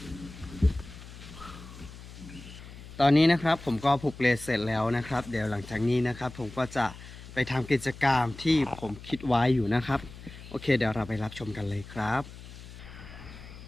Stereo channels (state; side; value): noise; left; hum, 15 dB below the sound